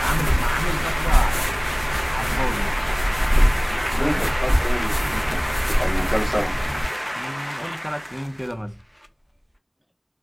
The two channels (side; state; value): both; identical; correlation 1.00